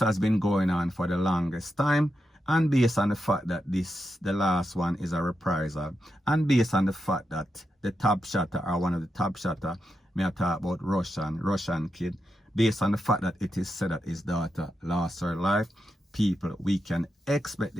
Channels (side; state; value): both; normal; correlation 0.86